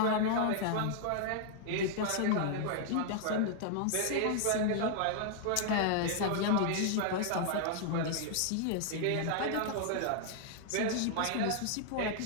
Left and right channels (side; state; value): both; different; correlation 0.00